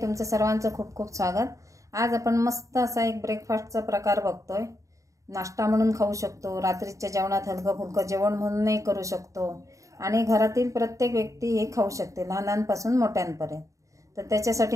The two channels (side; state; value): left; late; 0.16 ms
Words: सर्वांचं खूप खूप स्वागत। आज आपण मस्त असा एक ब्रेकफास्टचा प्रकार बघतोय। नाश्ता म्हणून खाऊ शकतो, रात्रीच्या जेवणात हलकं फुलकं जेवण म्हणूनही करू शकतो आणि घरातील प्रत्येक व्यक्ती हे खाऊ शकते, लहानांपासून मोठ्यांपर्यंत। तर